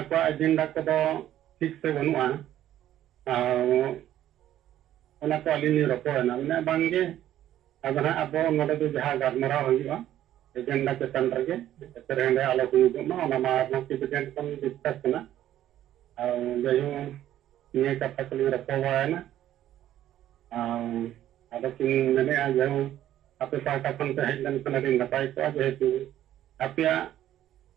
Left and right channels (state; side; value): quieter; left; 12.3 dB